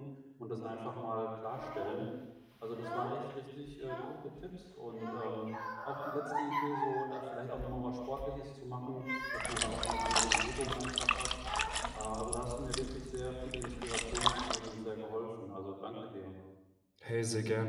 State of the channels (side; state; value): both; identical; correlation 1.00